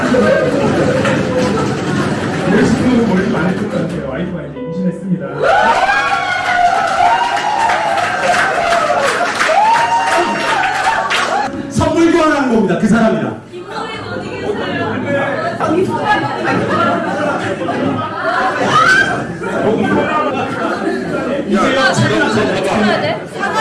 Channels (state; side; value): identical; both; correlation 1.00